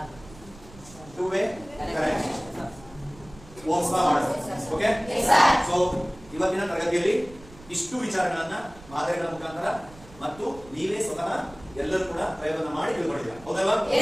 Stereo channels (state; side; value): noise; right; rumble, 21 dB below the sound